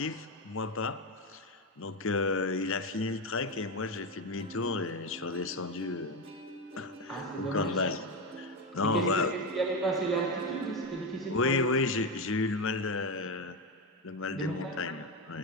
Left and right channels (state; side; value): normal; both; correlation 0.13